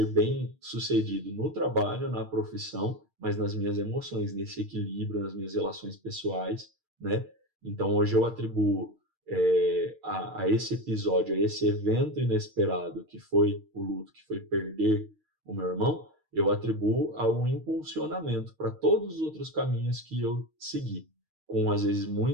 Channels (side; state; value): left; late; 6.5 ms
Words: bem sucedido no trabalho, na profissão, mas nas minhas emoções, nesse equilíbrio, nas minhas relações pessoais, né? Então hoje eu atribuo a esse episódio, a esse evento inesperado que foi o luto, que foi perder o meu irmão, eu atribuo a um impulsionamento para todos os outros caminhos que eu segui, com às vezes